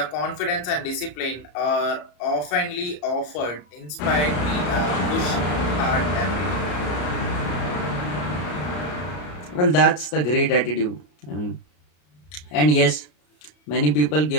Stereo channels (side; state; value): right; late; 33 ms